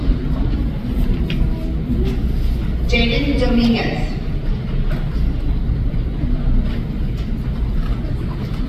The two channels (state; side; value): identical; both; correlation 1.00